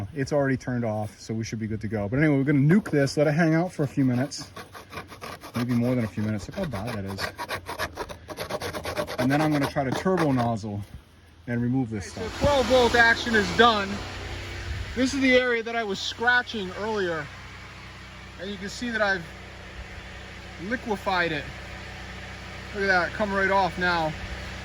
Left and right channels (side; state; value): both; identical; correlation 1.00